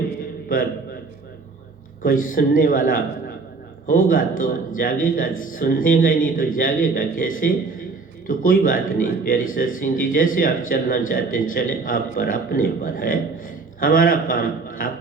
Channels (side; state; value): left; quieter; 4.1 dB